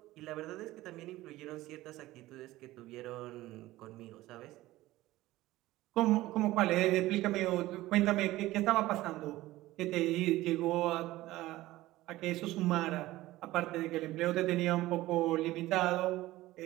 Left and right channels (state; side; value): quieter; left; 17.1 dB